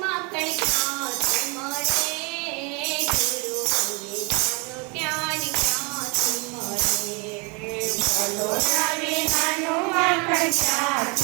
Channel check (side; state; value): left; quieter; 31.3 dB